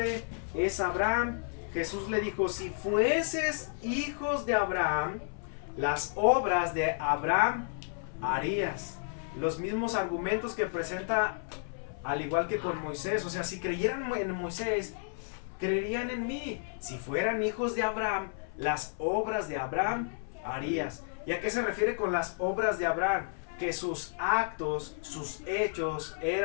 es Abraham. Jesús le dijo, si fueses hijos de Abraham, las obras de Abraham harías. Los mismos argumentos que presenta al igual que con Moisés. O sea, si creyeran en Moisés, creerían en mí. Si fueran hijos de Abraham, las obras de Abraham harías. ¿Y a qué se refiere con las obras de Abraham? Que sus actos, sus hechos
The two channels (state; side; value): silent; right; 57 dB below the other